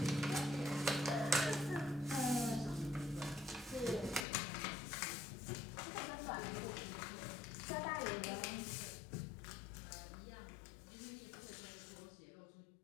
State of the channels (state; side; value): drops out; right; at 4.2 s